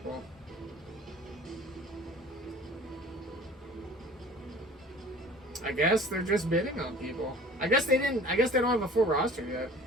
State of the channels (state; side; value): normal; both; correlation 0.45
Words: I guess they're just bidding on people. I guess they don't have a full roster yet.